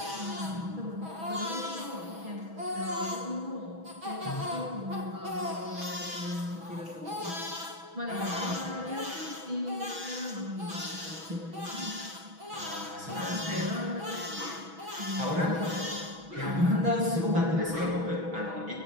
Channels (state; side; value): late; left; 6.2 ms